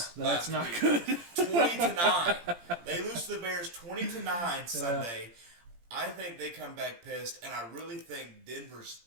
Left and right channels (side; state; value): left; late; 17 ms